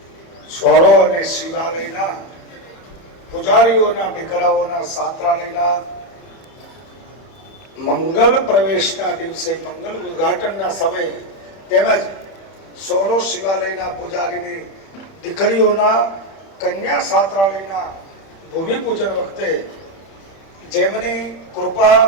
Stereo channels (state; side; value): late; right; 31 ms